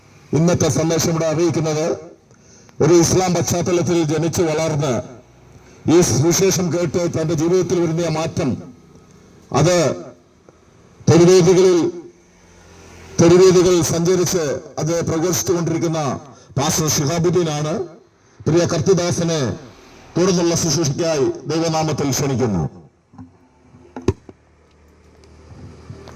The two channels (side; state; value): both; identical; correlation 1.00